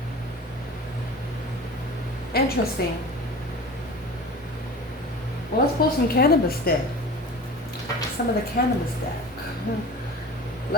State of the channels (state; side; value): normal; both; correlation 0.37